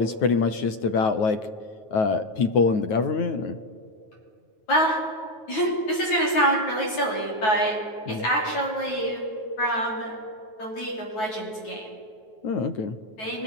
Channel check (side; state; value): right; late; 9.3 ms